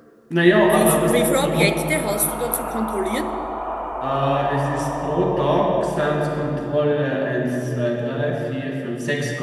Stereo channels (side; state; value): both; identical; correlation 1.00